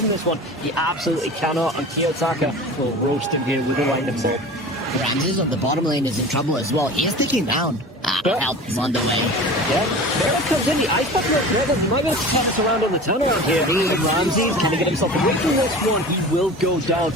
this one? He absolutely cannot, and Kiyotaka will roast him here with a lightning bolt. Ramses on the bottom lane is in trouble as well. He is taking down. Help is on the way. Yeah, there it comes in. The ice bucket red. He might be able to pop us around on the turnaround here. Ramses, can he get himself away from this one? He will go down.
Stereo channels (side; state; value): both; normal; correlation 0.36